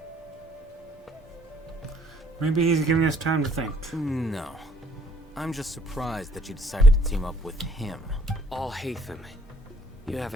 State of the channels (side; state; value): both; normal; correlation 0.62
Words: Maybe he's giving us time to think. No. I'm just surprised that you decided to team up with him. All Hatham. You